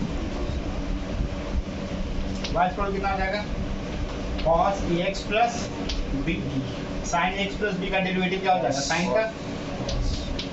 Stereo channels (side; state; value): both; identical; correlation 1.00